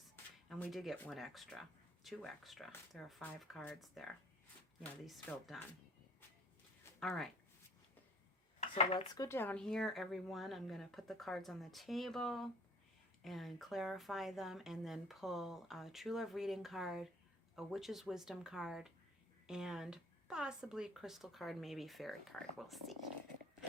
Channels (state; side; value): normal; both; correlation 0.52